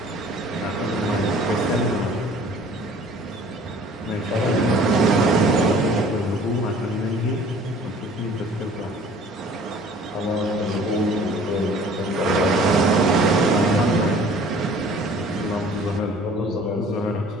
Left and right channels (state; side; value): normal; both; correlation 0.50